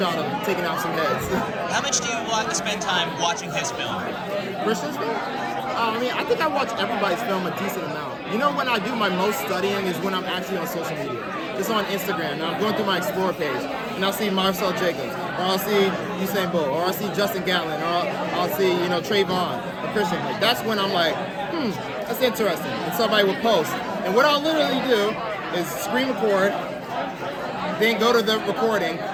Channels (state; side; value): identical; both; correlation 1.00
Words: of taking out some heads. How much do you want to spend time watching his film? Christian's film? I think I watch everybody's film a decent amount. When I do my most studying is when I'm actually on social media. Just on Instagram. Now I'm going through my Explore page, and I'll see Marcel Jacobs, or I'll see Usain Bolt, or I'll see Justin Gatlin, or I'll see, Trayvon, or Christian. Like, that's when I'm like, that's interesting. And somebody will post. And what I'll literally do is screen record, then go to the recording,